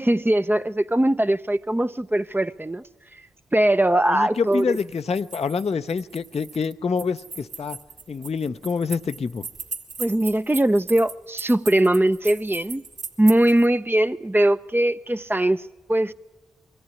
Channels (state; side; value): normal; both; correlation 0.93